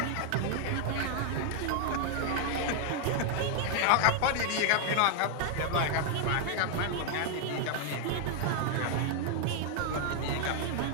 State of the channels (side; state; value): both; different; correlation 0.00